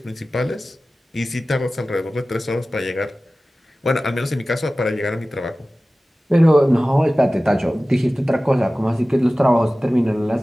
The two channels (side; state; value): both; normal; correlation 0.96